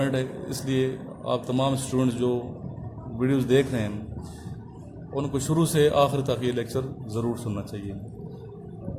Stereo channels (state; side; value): identical; both; correlation 1.00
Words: ہے، اس لیے آپ تمام اسٹوڈنٹس جو ویڈیوز دیکھ رہے ہیں ان کو شروع سے آخر تک یہ لیکچر ضرور سننا چاہیے۔